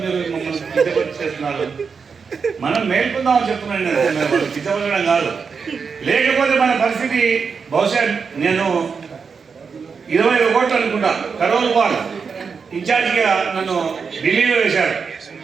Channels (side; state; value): left; quieter; 5.6 dB